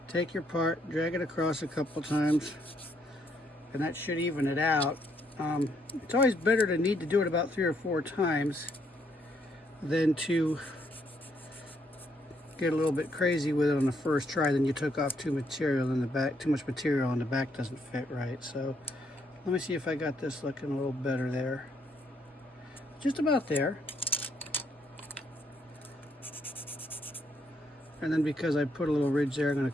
take your part, drag it across a couple times, and that should even it out. It's always better to need to do it about 3 or 4 times than to get a little bit crazy with it on the first try. Then you took off too much material in the back doesn't fit right. So let me see if I got this looking a little better there. Just about there. And then because I put a little ridge there, I'm going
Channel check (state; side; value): normal; both; correlation 0.72